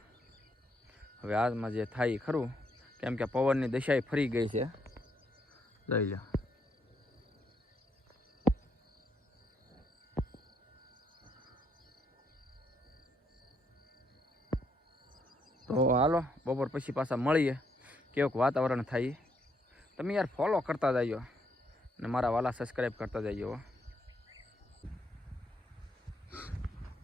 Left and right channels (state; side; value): normal; both; correlation 0.74